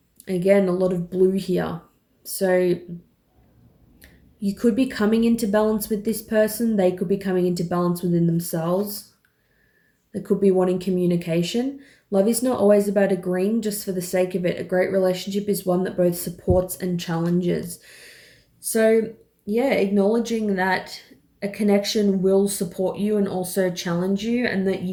Again, a lot of blue here. So you could be coming into balance with this person. They could be coming into balance within themselves. They could be wanting communication. Love is not always about agreeing just for the sake of it. A great relationship is one that both supports and challenges. So, yeah, acknowledging that a connection will support you and also challenge you, and that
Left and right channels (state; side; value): identical; both; correlation 1.00